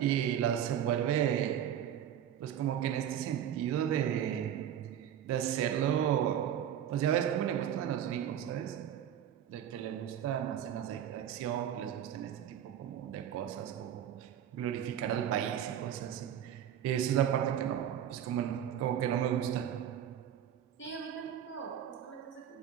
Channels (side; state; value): left; quieter; 10.0 dB